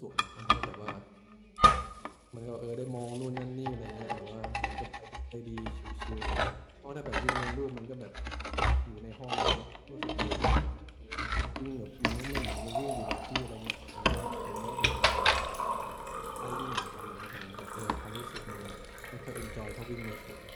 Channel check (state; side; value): identical; both; correlation 1.00